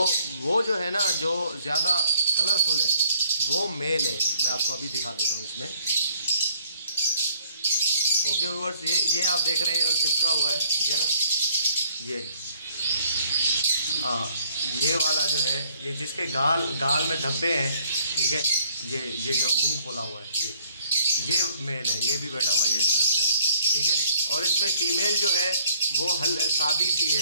वो जो है ना, जो ज़्यादा कलरफुल है वो मेल है। मैं आपको अभी दिखा देता हूँ इसमें। ओके व्यूअर्स, ये आप देख रहे हैं चिपका हुआ है, ठीक है ना। ये वाला जो है, ये जिसके गाल में धब्बे हैं, ठीक है, ये जो मुंह खोला हुआ है, ये मेल है। ये भी बैठा हुआ है ये इस तरफ से, ठीक है। और इसमें फीमेल जो है वो सादी सी है,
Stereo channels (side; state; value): both; inverted; correlation -0.62